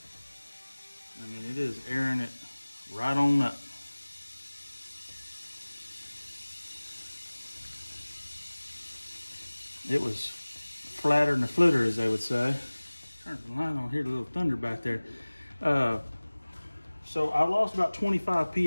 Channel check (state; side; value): inverted; both; correlation -1.00